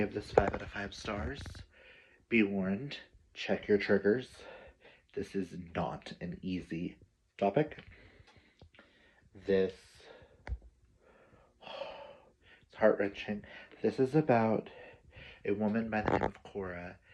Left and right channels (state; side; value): identical; both; correlation 1.00